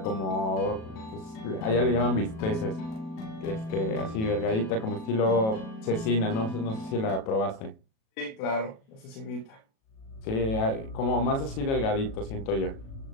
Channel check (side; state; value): right; late; 37 ms